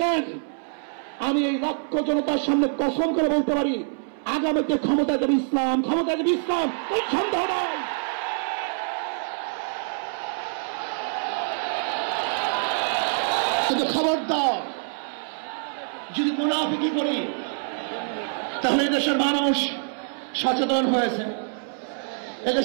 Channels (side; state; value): left; silent; 61 dB below the other